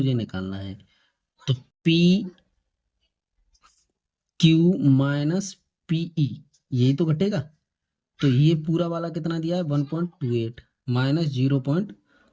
निकालना है, तो पी क्यू माइनस पीई यही तो घटेगा। तो ये पूरा वाला कितना दिया है 1.28 माइनस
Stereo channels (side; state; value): both; identical; correlation 1.00